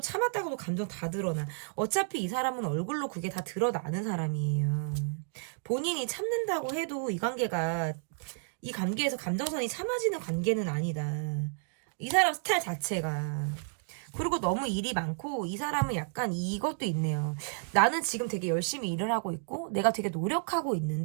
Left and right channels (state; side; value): silent; left; 57 dB below the other